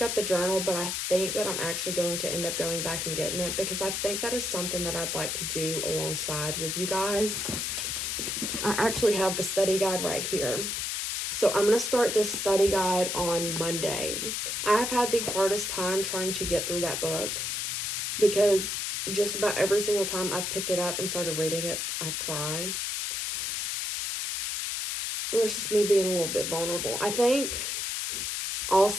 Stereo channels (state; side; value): noise; left; hiss, 1 dB below the sound